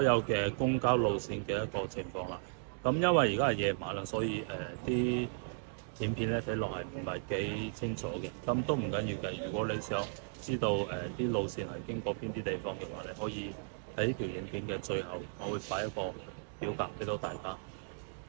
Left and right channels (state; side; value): silent; left; digital silence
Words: 有嘅公交路線嘅一個情況啦。咁因為而家係夜晚啦，所以啲影片咧睇落係唔係幾清楚嘅。咁都唔緊要嘅。如果你想知道啲路線係經過邊啲地方嘅話，你可以喺呢條影片嘅最後，我會擺一個表格俾到大家。